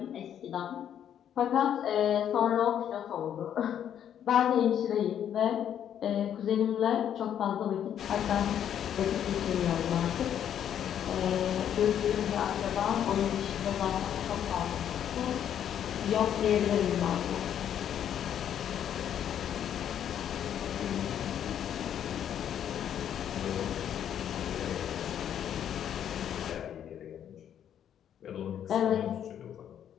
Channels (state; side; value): quieter; right; 9.7 dB